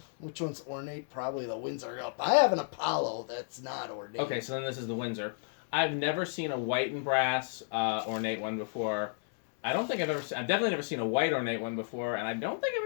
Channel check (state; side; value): silent; right; digital silence